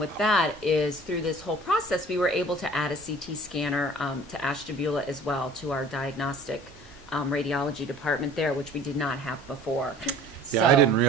that is through this whole process, we were able to add a CT scanner to Ashtabula as well, to our diagnostic radiology department there, which we did not have before. Yeah, I So- didn't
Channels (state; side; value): normal; both; correlation 0.47